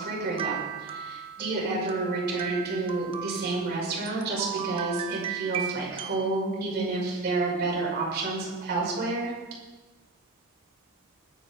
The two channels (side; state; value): left; quieter; 3.3 dB